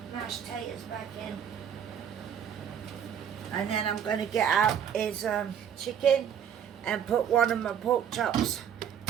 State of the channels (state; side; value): quieter; left; 8.6 dB